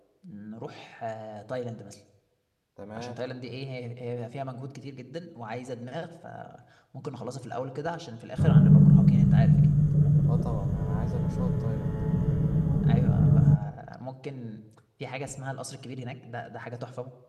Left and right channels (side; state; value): both; identical; correlation 1.00